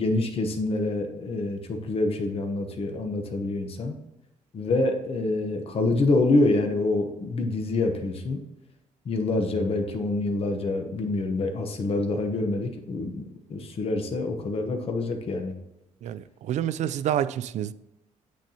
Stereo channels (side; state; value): both; normal; correlation 0.68